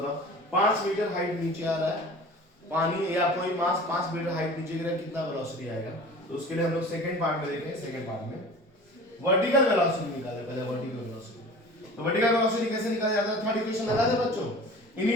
5 मीटर हाइट नीचे आ रहा है पानी, या कोई मास 5 मीटर हाइट नीचे गिरा, कितना वेलोसिटी आएगा? तो उसके लिए हम लोग सेकंड पार्ट में देखें। सेकंड पार्ट में वर्टिकल वेलोसिटी निकाले, पहले वर्टिकल वेलोसिटी तो वर्टिकल वेलोसिटी कैसे निकाला जाता है? थर्ड इक्वेशन लगा दे बच्चों।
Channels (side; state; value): both; normal; correlation 0.40